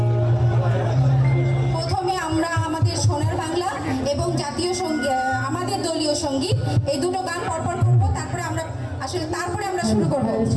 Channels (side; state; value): both; identical; correlation 1.00